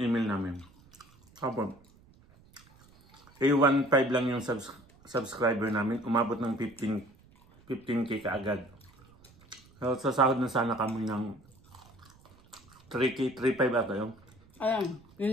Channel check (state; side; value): noise; right; rumble, 27 dB below the sound